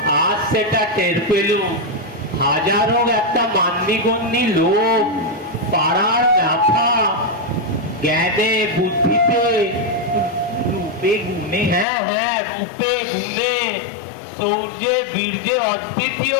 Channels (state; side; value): drops out; right; at 11.9 s